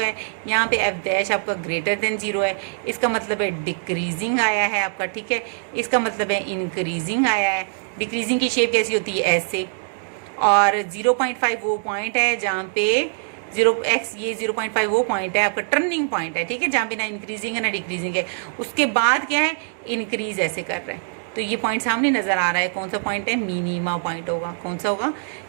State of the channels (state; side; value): silent; left; digital silence